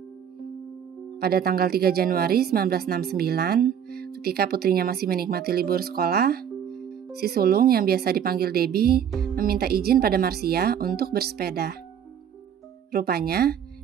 Pada tanggal 3 Januari 1969, ketika putrinya masih menikmati libur sekolah, si sulung yang biasa dipanggil Debbie meminta izin pada Marcia untuk bersepeda. Rupanya,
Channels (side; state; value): left; quieter; 8.6 dB